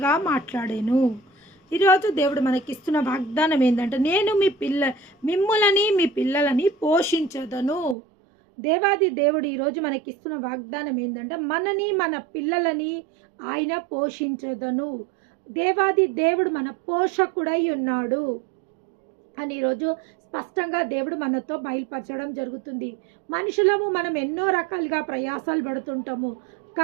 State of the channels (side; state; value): left; drops out; at 8.0 s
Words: మాట్లాడాను. ఈరోజు దేవుడు మనకిస్తున్న వాగ్దానం ఏంటంటే, నేను మిమ్మల్ని మీ పిల్లలని పోషించదను. దేవాది దేవుడు ఈరోజు మనకిస్తున్న వాగ్దానం ఏంటంటే, మనని మన పిల్లలని ఆయన పోషించదను. దేవాది దేవుడు మన పోషకుడై ఉన్నాడు అని ఈరోజు స్పష్టంగా దేవుడు మనతో బయలుపరచడం జరుగుతుంది. మనుషులము మనం ఎన్నో రకాలుగా ప్రయాసాలు పడుతుంటాము,